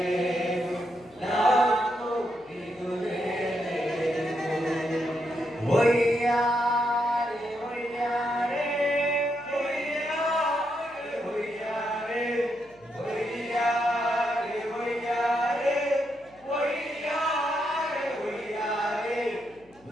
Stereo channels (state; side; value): noise; left; hum, 30 dB below the sound